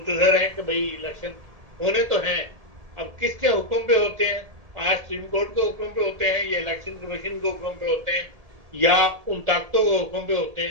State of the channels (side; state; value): left; late; 1.7 ms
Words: हैं कि भाई इलेक्शन होने तो हैं। अब किसके हुक्म पे होते हैं? आज सुप्रीम कोर्ट के हुक्म पे होते हैं या इलेक्शन कमीशन के हुक्म पे होते हैं या उन ताकतों के हुक्म पे होते